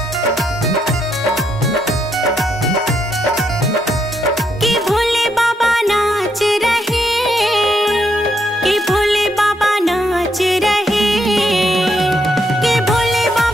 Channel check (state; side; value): normal; both; correlation 0.77